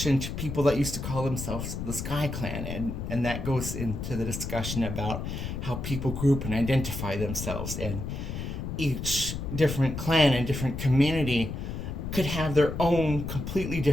to people that used to call themselves the Sky Clan, and that goes into the discussion about how people group and identify themselves, and each different clan and different community could have their own completely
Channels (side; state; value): left; noise; rumble, 5 dB below the sound